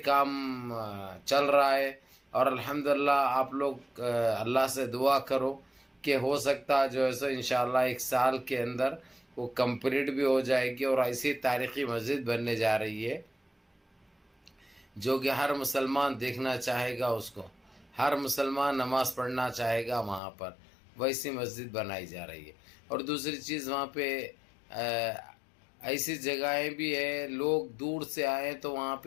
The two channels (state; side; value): drops out; right; at 20.2 s